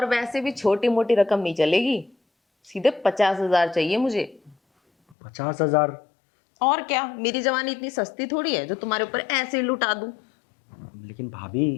वैसे भी छोटी मोटी रकम नहीं चलेगी, सीधे 50,000 चाहिए मुझे। 50,000? और क्या, मेरी जवानी इतनी सस्ती थोड़ी है जो तुम्हारे ऊपर ऐसे ही लुटा दूं। लेकिन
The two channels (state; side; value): drops out; right; at 5.2 s